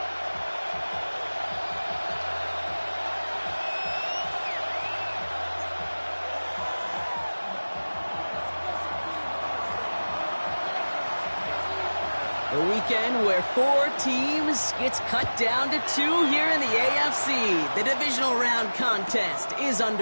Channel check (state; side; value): inverted; both; correlation -1.00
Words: A weekend where 4 teams gets cut down to 2 here in the AFC. The divisional round contest is